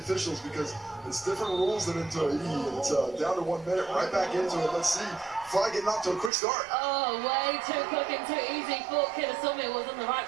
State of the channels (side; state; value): left; drops out; at 6.3 s